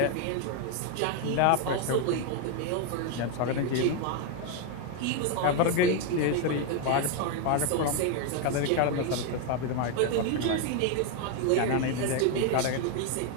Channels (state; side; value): different; both; correlation 0.01